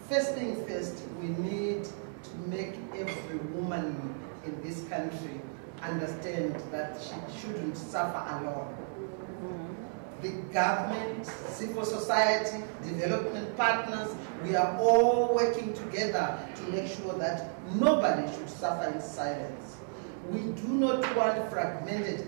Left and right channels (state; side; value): silent; left; digital silence